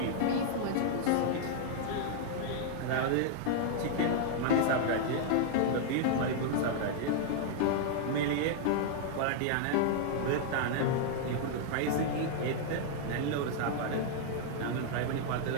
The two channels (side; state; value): both; different; correlation -0.01